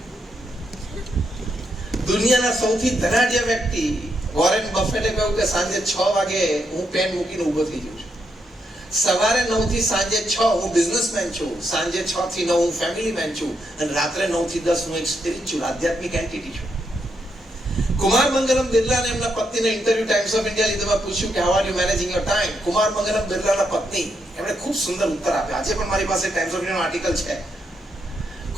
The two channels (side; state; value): both; normal; correlation 0.80